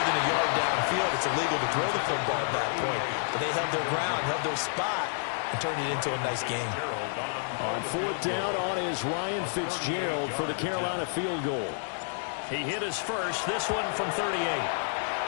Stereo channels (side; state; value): right; silent; digital silence